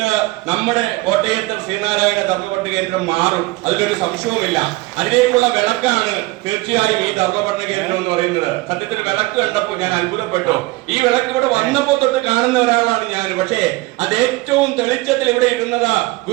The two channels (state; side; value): quieter; left; 21.3 dB